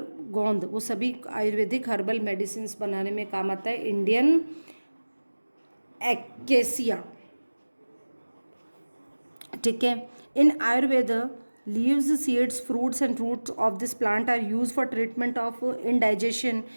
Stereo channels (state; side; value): inverted; both; correlation -1.00